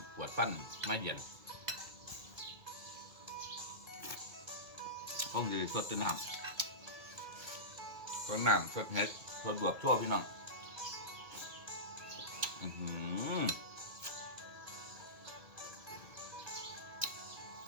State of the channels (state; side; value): late; left; 2.2 ms